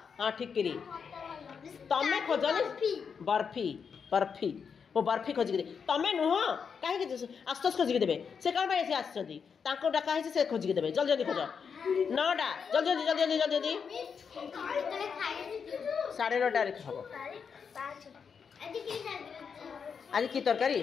हाँ ठिकरी तमें खोजनी बर्फी बर्फी वो बर्फी खोजिक तमें नुह कहीं आशुतोष खोजिक देवे से कौन पाई आसो डाका से खोजिक देवे जल्दी जल्दी खोज 9टा जल्दी जल्दी जल्दी जल्दी जल्दी 9:30 हम आज की तरकारी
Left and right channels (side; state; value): right; quieter; 6.3 dB